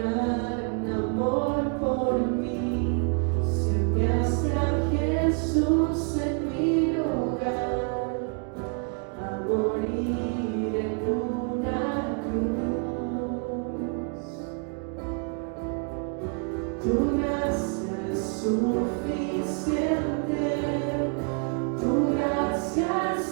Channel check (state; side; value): quieter; left; 39.1 dB